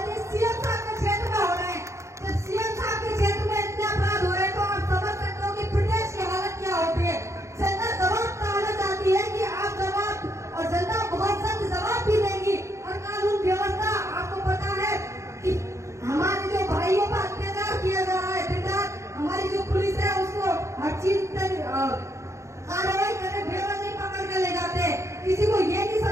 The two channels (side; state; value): left; late; 0.14 ms